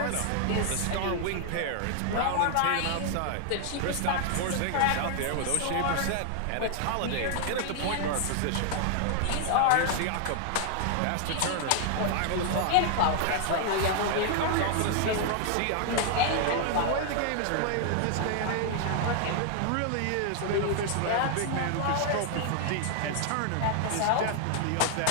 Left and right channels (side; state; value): both; different; correlation 0.00